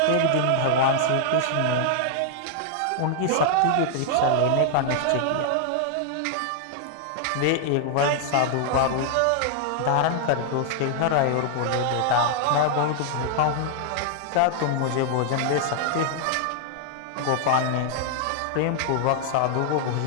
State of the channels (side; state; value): both; different; correlation 0.00